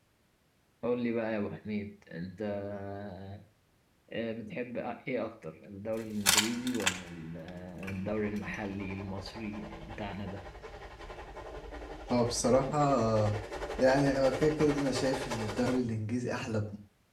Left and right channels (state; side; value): identical; both; correlation 1.00